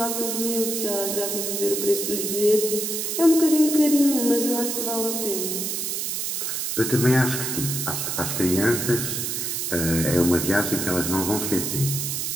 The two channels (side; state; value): right; noise; hiss, 2 dB below the sound